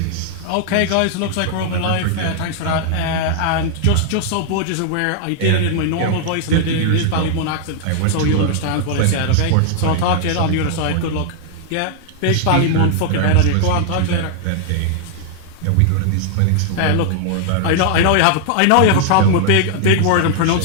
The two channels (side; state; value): both; different; correlation -0.01